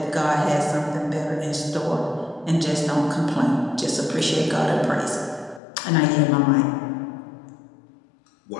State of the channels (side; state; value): right; drops out; at 5.6 s